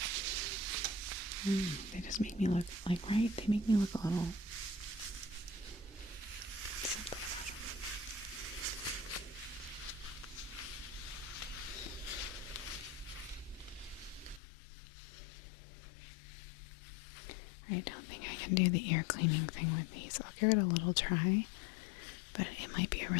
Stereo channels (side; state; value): right; drops out; at 14.4 s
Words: They just make me look like, right? They make me look a little something about them. I don't think I can do the ear cleaning thing with these. I'll give it a little try, but it might be a